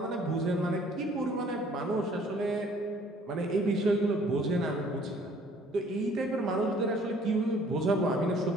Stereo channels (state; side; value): normal; both; correlation 0.57